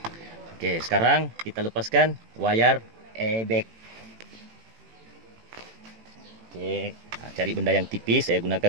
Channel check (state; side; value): late; left; 18 ms